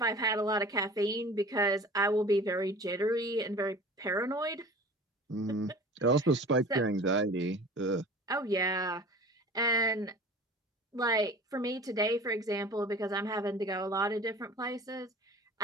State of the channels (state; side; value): normal; both; correlation 0.41